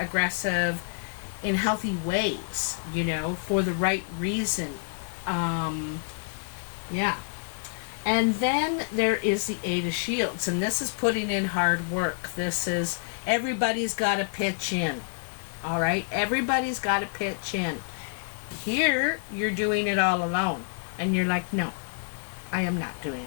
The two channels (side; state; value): right; silent; 55 dB below the other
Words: in healthy ways, you know, for the right reason. Yeah. And then there is the Eight of Shields, and this is putting in hard work. This is, everybody's got to pitch in. All right? Everybody's got to pitch in. Here, you're doing it all alone. And you're like, no, I am not doing